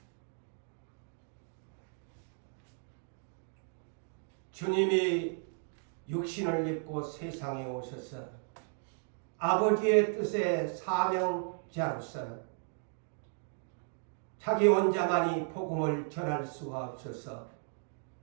주님이 육신을 입고 세상에 오셔서 아버지의 뜻의 사명자로서 자기 혼자만이 복음을 전할 수가 없어서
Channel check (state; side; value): silent; left; 54 dB below the other